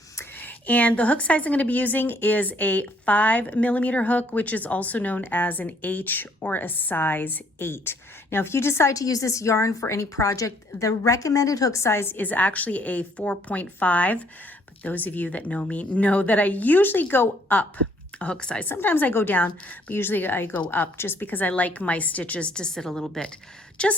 And the hook size I'm going to be using is a 5mm hook, which is also known as an H or a size 8. Now, if you decide to use this yarn for any project, the recommended hook size is actually a 4.5. But those of you that know me know that I usually go up a hook size. Sometimes I go down, but usually I go up just because I like my stitches to sit a little bit,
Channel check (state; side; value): normal; both; correlation 0.64